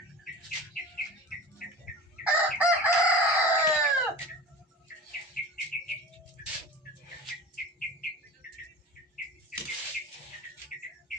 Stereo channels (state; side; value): normal; both; correlation 0.35